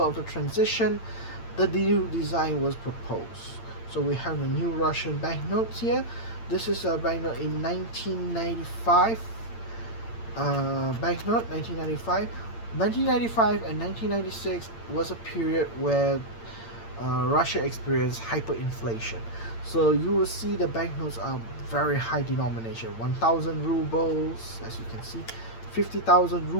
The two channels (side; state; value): right; late; 8.8 ms